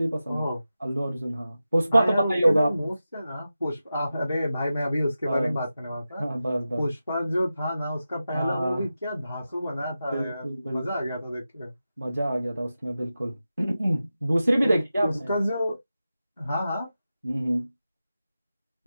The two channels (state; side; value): inverted; both; correlation -0.92